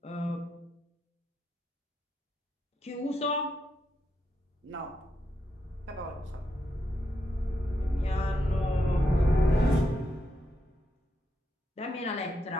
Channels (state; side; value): normal; both; correlation 0.82